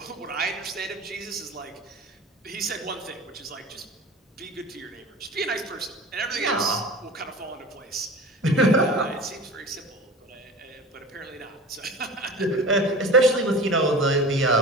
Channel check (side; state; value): both; normal; correlation 0.35